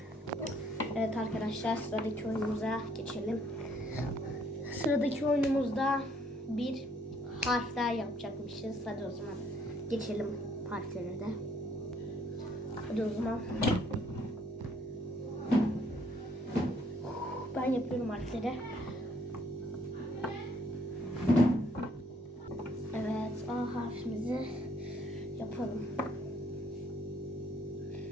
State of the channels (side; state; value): both; normal; correlation 0.66